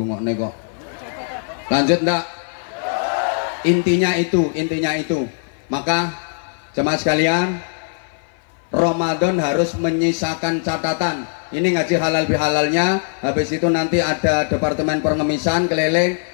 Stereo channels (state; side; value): silent; right; 57 dB below the other